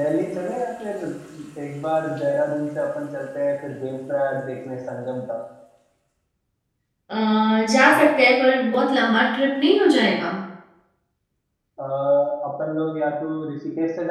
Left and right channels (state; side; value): identical; both; correlation 1.00